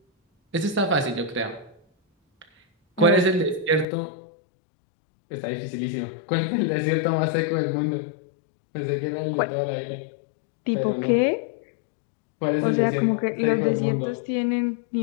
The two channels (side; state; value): right; drops out; at 3.9 s